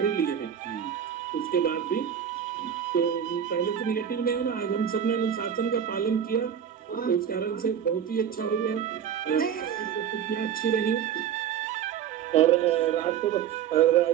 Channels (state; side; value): quieter; left; 8.7 dB